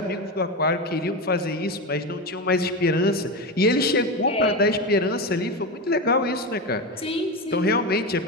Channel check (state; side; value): normal; both; correlation 0.18